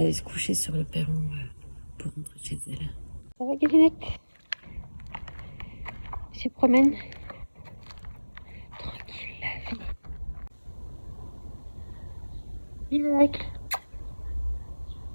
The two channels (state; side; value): inverted; both; correlation -1.00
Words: se coucher sur le perron pour rentrer chez elle. Ça va, Galinette? Elle se promène. Tranquille, la vie. Miracle.